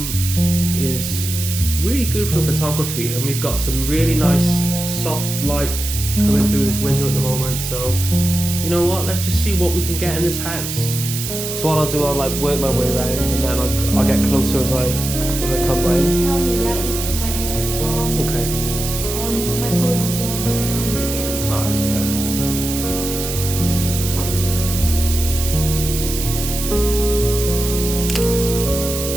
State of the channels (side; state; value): right; noise; hiss, 5 dB below the sound